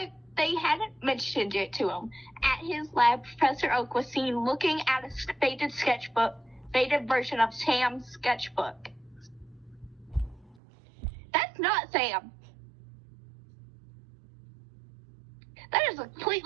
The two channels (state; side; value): drops out; left; at 10.6 s